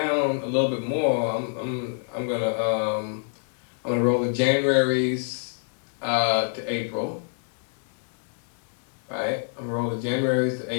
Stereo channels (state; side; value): silent; right; digital silence